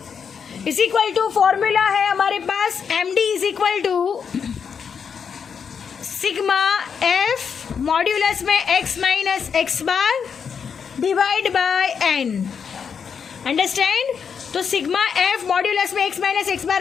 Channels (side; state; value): right; quieter; 6.7 dB